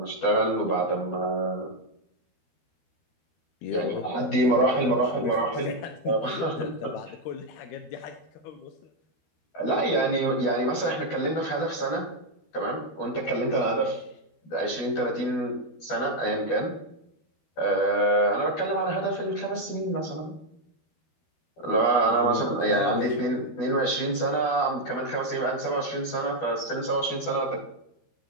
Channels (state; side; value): late; right; 12 ms